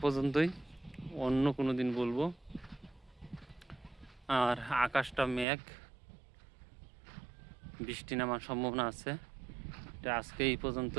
পর্যন্তই, অন্য কোনো দিন বলবো। আর আকাশটা মেঘ, বৃষ্টি নামার সম্ভাবনা আছে। এটা আজকে এই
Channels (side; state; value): left; drops out; at 5.5 s